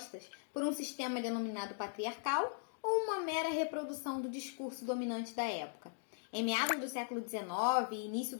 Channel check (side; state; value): right; silent; digital silence